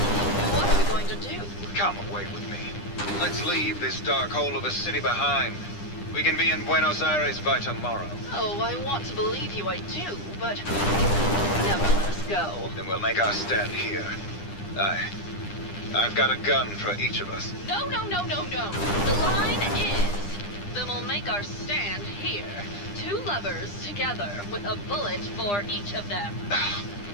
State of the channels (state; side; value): late; right; 9.9 ms